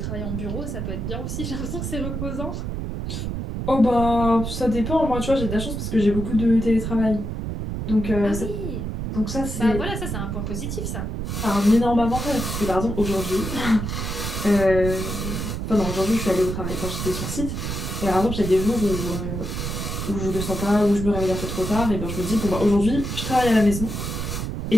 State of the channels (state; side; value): noise; right; rumble, 4 dB below the sound